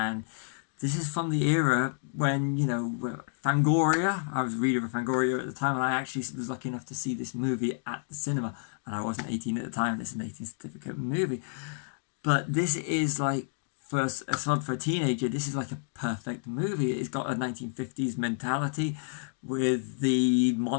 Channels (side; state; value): right; silent; digital silence